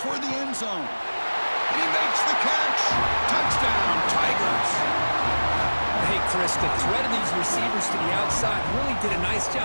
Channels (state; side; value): inverted; both; correlation -1.00